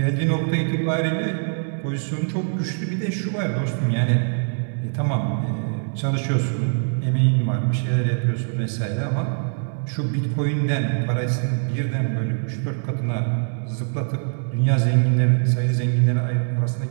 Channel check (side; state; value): left; silent; digital silence